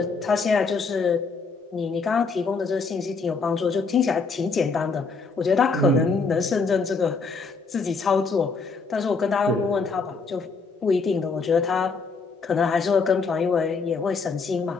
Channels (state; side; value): quieter; right; 4.5 dB